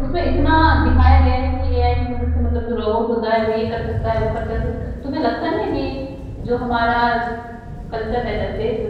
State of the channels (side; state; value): both; identical; correlation 1.00